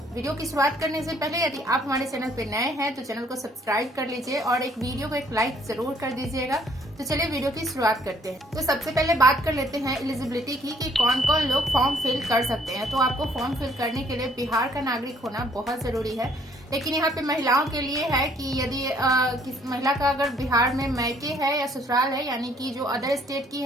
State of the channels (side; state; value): both; normal; correlation 0.63